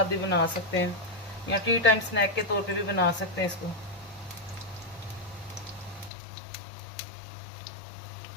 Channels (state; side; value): drops out; right; at 6.1 s